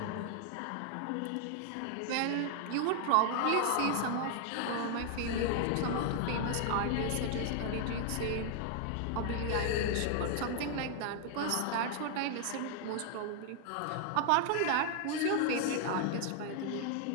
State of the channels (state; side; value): different; both; correlation 0.00